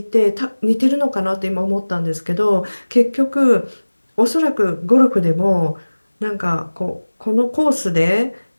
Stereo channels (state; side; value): inverted; both; correlation -1.00